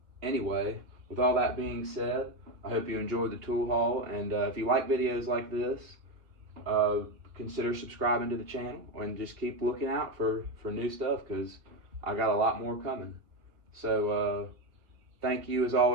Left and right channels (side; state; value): left; late; 2.2 ms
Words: anyway, with all that being said, I hope you enjoyed the tool haul, and if you like videos like this, consider subscribing to the channel and just keep looking out for new stuff because I got a lot more coming. So thank you as